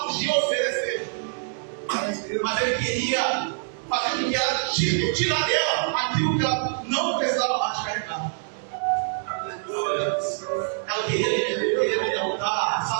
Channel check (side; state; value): left; silent; 62 dB below the other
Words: podia oferecer, mas ele queria fazer com que ela tirar dela aquilo que ela não precisava mais carregar. Ela queria me derrotar,